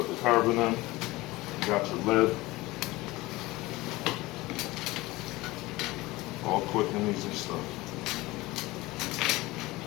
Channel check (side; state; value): right; quieter; 20.2 dB